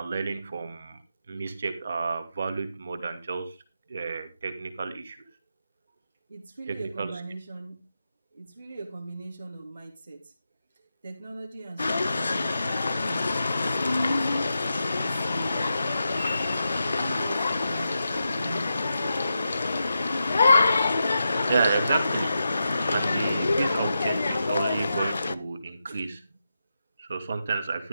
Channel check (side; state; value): both; inverted; correlation -0.88